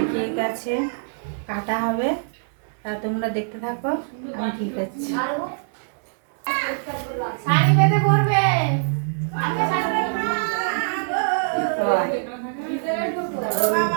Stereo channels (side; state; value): left; silent; digital silence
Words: কেক আছে, কাটা হবে, তা তোমরা দেখতে থাকো, আমি ঠিক আছে। শাড়ি বেঁধে পরবে।